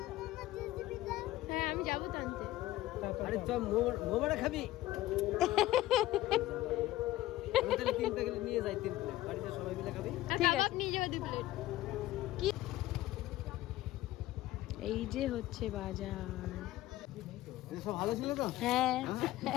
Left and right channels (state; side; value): quieter; right; 15.9 dB